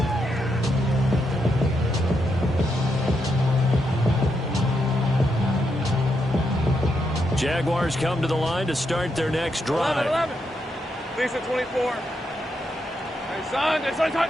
Jaguars come to the line to start their next drive. 11. Lisa 24. Hey, son.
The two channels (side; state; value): both; normal; correlation 0.81